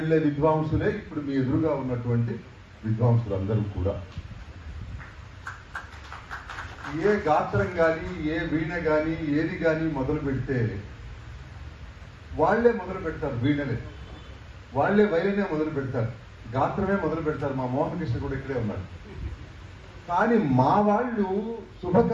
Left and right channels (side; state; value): both; identical; correlation 1.00